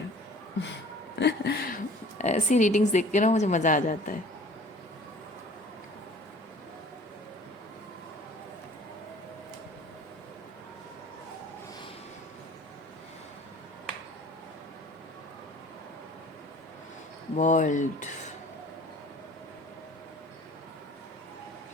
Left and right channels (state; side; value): normal; both; correlation 0.48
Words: ऐसी रीडिंग्स देख के ना मुझे मज़ा आ जाता है। वर्ल्ड